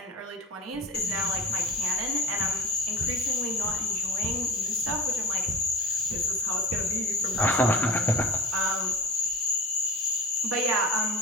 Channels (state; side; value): normal; both; correlation 0.31